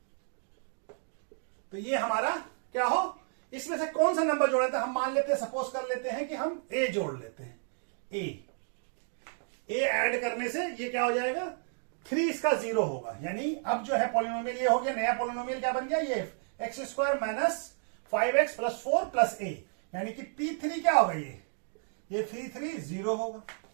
तो ये हमारा क्या हो? इसमें से कौन सा नंबर जोड़े? तो हम मान लेते हैं, सपोज कर लेते हैं कि हम a जोड़ लेते हैं। a ऐड करने से ये क्या हो जाएगा? 3 इसका 0 होगा। यानी अब जो है पॉलिनोमियल ये हो गया, नया पॉलिनोमियल क्या बन गया? ये x square minus 5x plus 4 plus a। यानी कि p3 क्या होगा? ये 3 0 होगा।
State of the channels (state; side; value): silent; left; 57 dB below the other